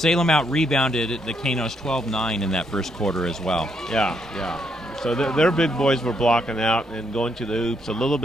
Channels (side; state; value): both; normal; correlation 0.75